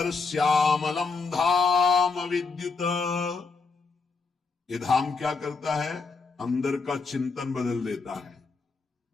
श्यामलम धाम विद्युत। ये धाम क्या करता है? अंदर का चिंतन बदल देता है।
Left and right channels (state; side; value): quieter; right; 4.5 dB